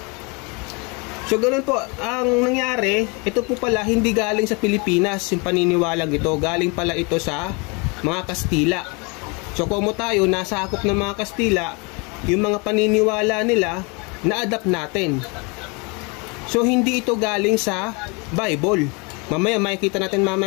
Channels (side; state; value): right; quieter; 30.3 dB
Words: So ganoon po, ang nangyari, ito po pala hindi galing sa Pilipinas, yung paniniwalang ito, galing pala ito sa mga Kastila. So kung tayo, nasa akop ng mga Kastila, yung mga paniniwala nila, na-adapt natin. So hindi ito galing sa Bible. Mamaya makikita natin